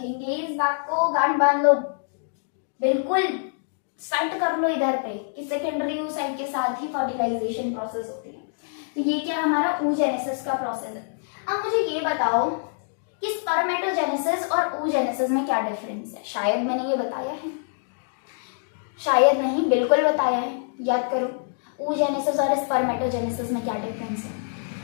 इस बात को, गांठ बांध लो, बिल्कुल सेट कर लो इधर पे कि सेकेंडरी oocyte के साथ ही फर्टिलाइजेशन प्रोसेस होती है। तो ये क्या हमारा oogenesis का प्रोसेस है। अब मुझे ये बताओ कि स्पर्मेटोजेनेसिस और oogenesis में क्या डिफरेंस है। शायद मैंने ये बताया है, शायद नहीं, बिल्कुल बताया है, याद करो। oogenesis और स्पर्मेटोजेनेसिस में क्या डिफरेंस है।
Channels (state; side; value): silent; right; digital silence